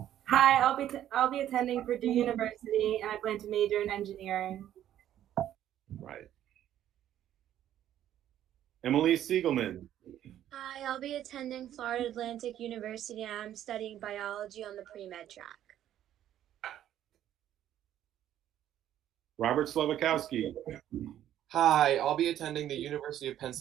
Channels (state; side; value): quieter; left; 11.6 dB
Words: Hi, I'll be attending Purdue University and I plan to major in engineering. Right. Emily Siegelman. Hi, I'll be attending Florida Atlantic University and I'm studying biology on the pre-med track. Robert Slavakowski. Hi, I'll be attending the University of